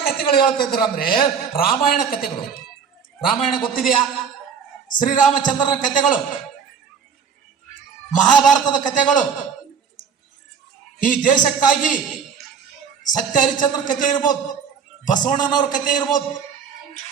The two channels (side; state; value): left; quieter; 6.7 dB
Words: ಕಥೆಗಳು ಹೇಳ್ತಾ ಇದ್ರು ಅಂದ್ರೆ, ರಾಮಾಯಣ ಕಥೆಗಳು. ರಾಮಾಯಣ ಗೊತ್ತಿದೆಯಾ? ಶ್ರೀರಾಮಚಂದ್ರನ ಕಥೆಗಳು, ಮಹಾಭಾರತದ ಕಥೆಗಳು, ಈ ದೇಶಕ್ಕಾಗಿ ಸತ್ಯ ಹರಿಶ್ಚಂದ್ರ ಕಥೆ ಇರ್ಬೋದು, ಬಸವಣ್ಣನವ್ರ ಕಥೆ ಇರ್ಬೋದು,